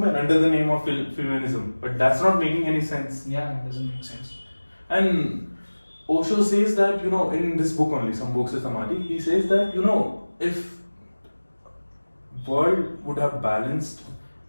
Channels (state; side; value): inverted; both; correlation -1.00